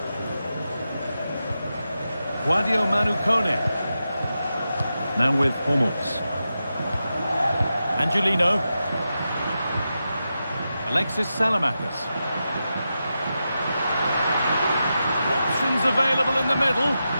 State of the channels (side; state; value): both; inverted; correlation -0.89